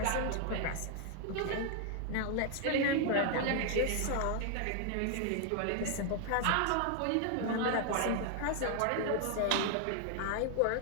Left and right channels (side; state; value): both; different; correlation 0.00